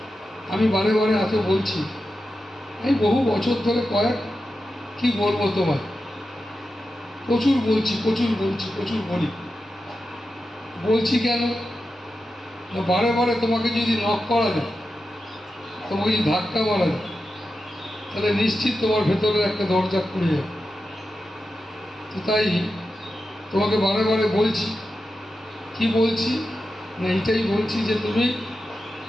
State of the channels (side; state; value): both; normal; correlation 0.90